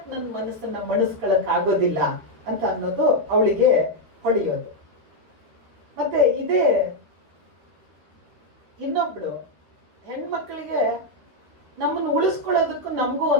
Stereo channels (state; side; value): late; left; 13 ms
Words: ನನ್ನ ಮನಸ್ಸನ್ನ ಮಣಿಸ್ಕೊಳಕ್ ಆಗೋದಿಲ್ಲ ಅಂತ ಅನ್ನೋದು ಅವಳಿಗೆ ಹೊಡೆಯೋದು. ಮತ್ತೆ ಇದೇ ಇನ್ನೊಬ್ಳು ಹೆಣ್ಮಕ್ಳಿಗೆ ನಮ್ಮನ್ನು ಉಳಿಸ್ಕೊಳ್ಳೋದಕ್ಕೂ ನಮಗೂ